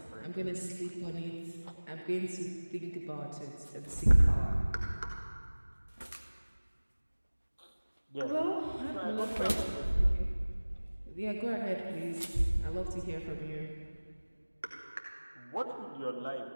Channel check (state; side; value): inverted; both; correlation -1.00